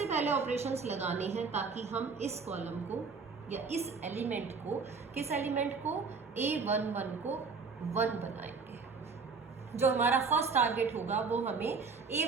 पहले ऑपरेशंस लगाने हैं ताकि हम इस कॉलम को या इस एलिमेंट को, किस एलिमेंट को, A11 को 1 बनाएंगे। जो हमारा फर्स्ट टारगेट होगा वो हमें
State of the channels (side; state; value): left; quieter; 4.9 dB